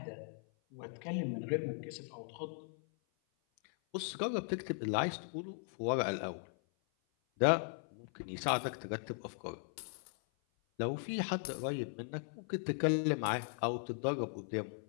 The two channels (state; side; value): silent; right; 52 dB below the other